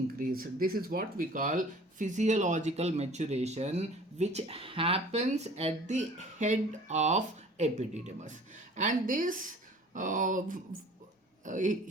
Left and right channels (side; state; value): both; normal; correlation 0.47